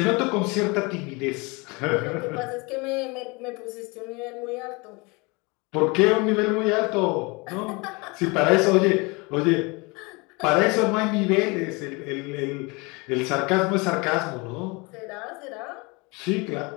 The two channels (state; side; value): quieter; right; 27.4 dB